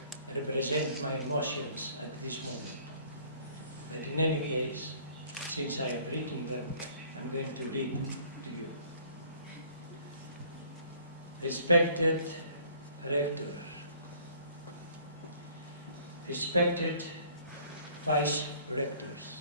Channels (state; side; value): inverted; both; correlation -0.55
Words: represent my emotions at this moment. But in any case, since I have written them, I'm going to read them to you. Respected Rector, respected Vice Rectors,